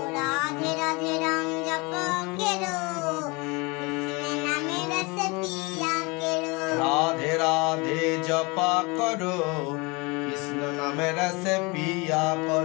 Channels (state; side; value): quieter; right; 27.4 dB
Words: রাধে রাধে রাম জপা কেরো কৃষ্ণ নামে রস পিয়া কেরো রাধে রাধে জপা করো কৃষ্ণ নামে রস পিয়া